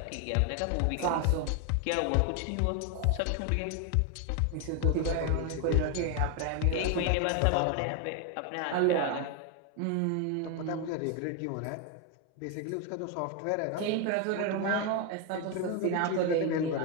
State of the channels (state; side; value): different; both; correlation 0.01